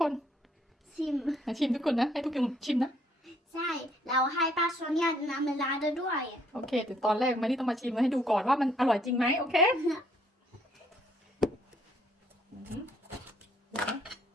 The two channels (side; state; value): both; normal; correlation 0.67